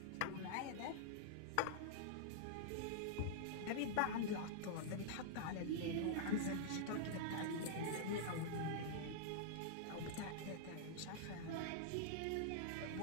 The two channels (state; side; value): different; both; correlation -0.02